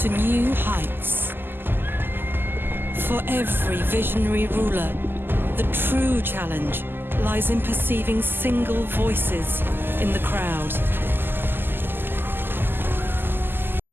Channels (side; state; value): left; late; 0.097 ms